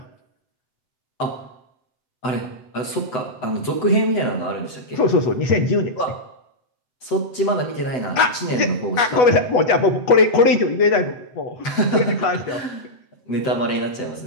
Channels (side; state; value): right; late; 8.2 ms